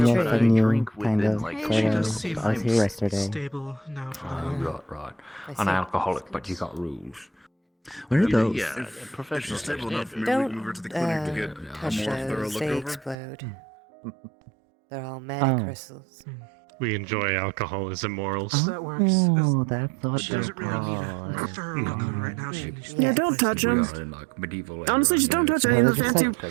yet but I then you drink kind within of like She sort does of- seem I was here like yesterday. stable now for Oh, now. right. I An see. alcoholic, but you got rules. Where are those? Yeah, If professional it's stable enough, maybe we Don't can move her to the clinic to get a touch more thorough those. look They over. explode. They're all mana Oh. crystals. We enjoy alcohol as immorals. That works. Oh, that's what She doesn't really need a thorough welcome right now. She needs Yeah, don't touch We him. are in like medieval. Honestly, just don't touch any of the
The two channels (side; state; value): left; drops out; at 13.2 s